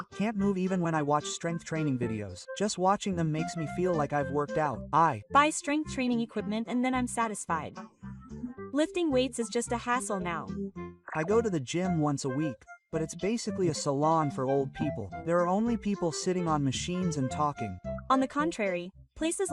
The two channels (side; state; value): both; identical; correlation 1.00